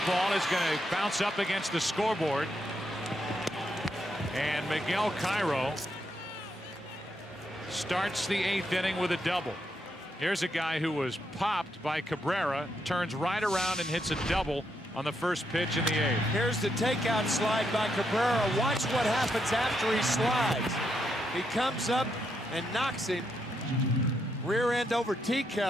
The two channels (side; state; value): both; normal; correlation 0.80